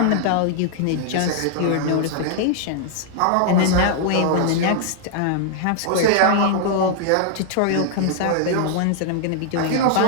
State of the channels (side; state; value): both; different; correlation -0.01